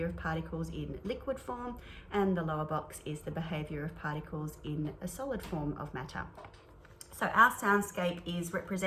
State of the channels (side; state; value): both; identical; correlation 1.00